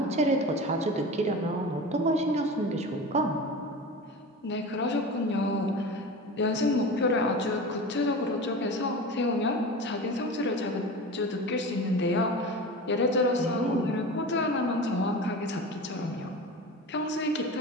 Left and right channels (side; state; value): both; normal; correlation 0.31